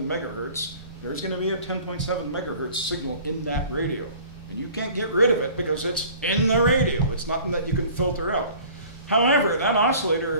megahertz, there's going to be a 10.7 megahertz signal in that radio. And you can't get rid of it because it's in the radio. It's nothing that you can filter out. However, that oscillator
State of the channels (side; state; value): both; inverted; correlation -0.47